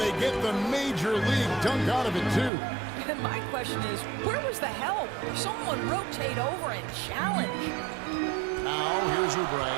they get the major league dunk out of it, too. And my question is, where was the help? Someone rotate over and challenge. Now, here's Oubre.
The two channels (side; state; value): left; drops out; at 2.5 s